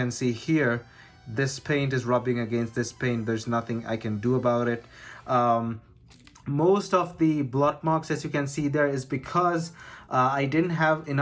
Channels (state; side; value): identical; both; correlation 1.00